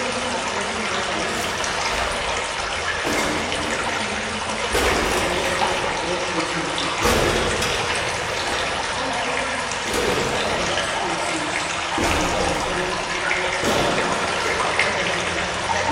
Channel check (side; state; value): both; identical; correlation 1.00